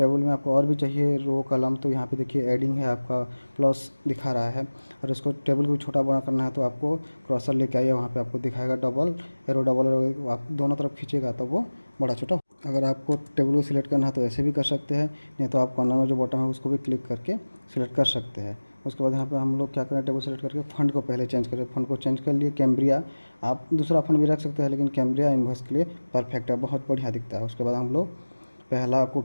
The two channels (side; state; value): both; inverted; correlation -1.00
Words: में आपको और भी चाहिए रो कलम, तो यहाँ पे देखिए एडिंग है, आपका प्लस दिखा रहा है। और इसको टेबल को छोटा बड़ा करना है तो आपको क्रॉसर लेके आइए, वहाँ पे आपको दिखाएगा डबल एरो, आप दोनों तरफ खींचेगा तो वो बड़ा छोटा। अगर आपको टेबल को सिलेक्ट करना है तो ऐसे भी कर सकते हैं, नहीं तो आप कॉर्नर में जो बटन है उसको भी क्लिक करके सिलेक्ट कर सकते हैं। उसके बाद यहाँ पे हम लोग क्या करें, टेबल सेलेक्ट करके फ़ंड को पहले चेंज करें। फ़ंड को चेंज कर लिए कैम्ब्रिया। आप दूसरा फ़ंड भी रख सकते हैं, लेकिन कैम्ब्रिया इन्वॉइस के लिए परफेक्ट है, बहुत बढ़िया दिखता है। उसके बाद हम लोग पहला को